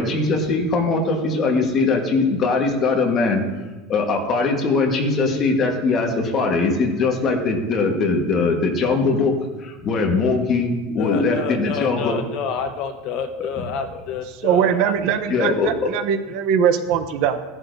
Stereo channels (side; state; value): both; normal; correlation 0.36